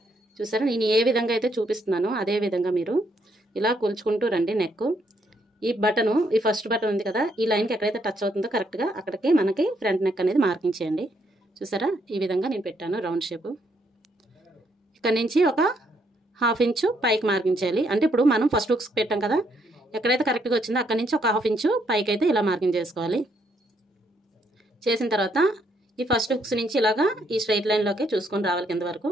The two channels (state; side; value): normal; both; correlation 0.73